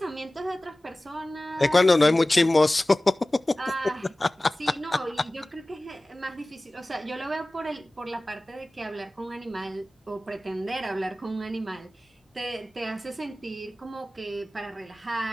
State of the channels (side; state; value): both; normal; correlation 0.97